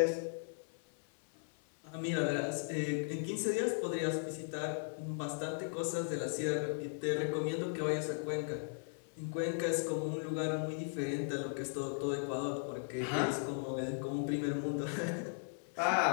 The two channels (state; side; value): silent; right; 53 dB below the other